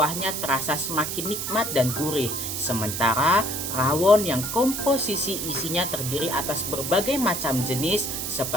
terasa semakin nikmat dan gurih. Sementara rawon yang komposisi isinya terdiri atas berbagai macam jenis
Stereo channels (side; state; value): right; noise; hiss, 4 dB below the sound